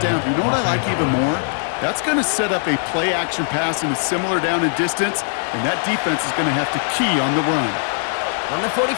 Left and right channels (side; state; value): right; silent; 65 dB below the other